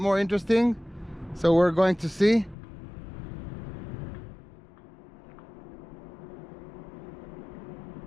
interesting. So we're going to see.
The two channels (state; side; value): drops out; right; at 2.6 s